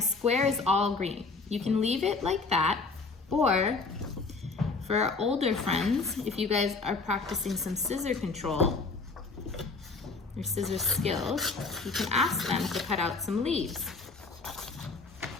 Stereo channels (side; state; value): right; quieter; 4.1 dB